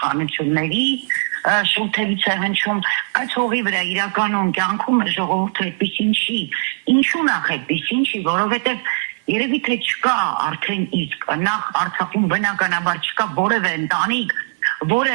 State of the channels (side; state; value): left; silent; 56 dB below the other